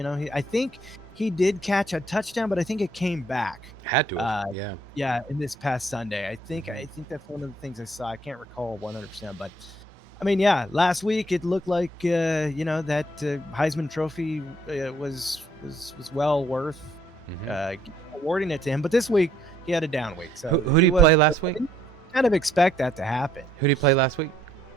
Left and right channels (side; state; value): both; normal; correlation 0.66